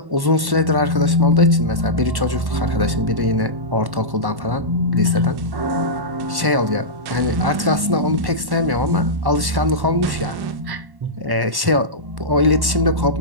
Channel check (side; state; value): left; late; 1.1 ms